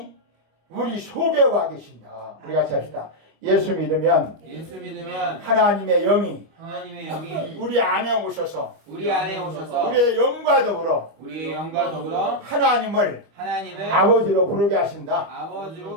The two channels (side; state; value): left; late; 25 ms